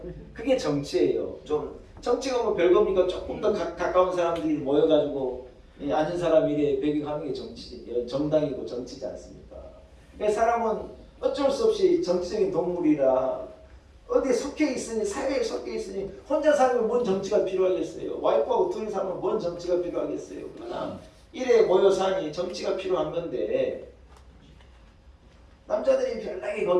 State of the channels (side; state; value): both; identical; correlation 1.00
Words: 그게 정치예요. 좀 정치가 뭐 별겁니까? 조금 더 가까운 사람들이 모여가지고 앉은 사람 이래 배경하는 게 정치, 정당이고 정치지 않습니까? 그러니까 사람은 어쩔 수 없이 정치적인 동물이라 어디에 속해 있으니, 사회에 속해 있으니 혼자 살면 뭔 정치가 필요하겠어요. 와이프하고 둘이 살면 뭔 정치가 필요하겠어요. 그러나 이래 모여 사니 정치가 필요한 건데 남자들이 별나게